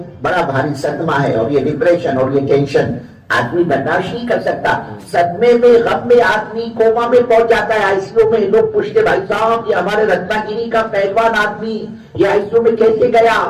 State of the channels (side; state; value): both; identical; correlation 1.00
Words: بڑا بھاری صدمہ ہے, اور یہ ڈپریشن اور یہ ٹینشن آدمی برداشت نہیں کر سکتا. صدمے میں, غم میں آدمی کوما میں پہنچ جاتا ہے. آئی سی یو میں لوگ پوچھتے, بھائی صاحب یہ ہمارے رتنا گیری کا پہلوان آدمی یہ آئی سی یو میں کیسے گیا,